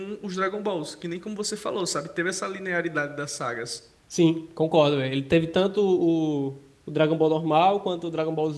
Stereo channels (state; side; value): identical; both; correlation 1.00